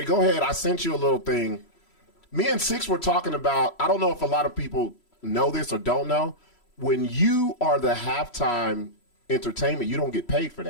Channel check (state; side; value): late; right; 3.0 ms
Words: go ahead. I sent you a little thing. Me and Sixx were talking about. I don't know if a lot of people know this or don't know. When you are the halftime entertainment, you don't get paid for